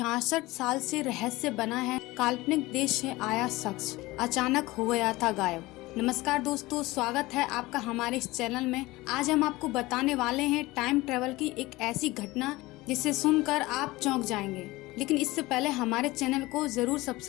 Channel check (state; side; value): quieter; right; 20.1 dB